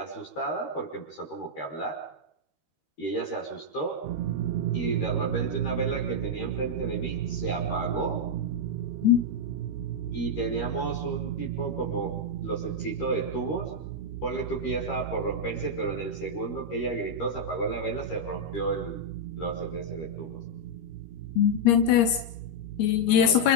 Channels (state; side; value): late; right; 13 ms